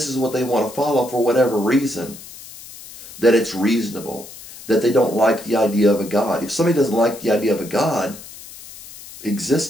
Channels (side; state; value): left; noise; hiss, 16 dB below the sound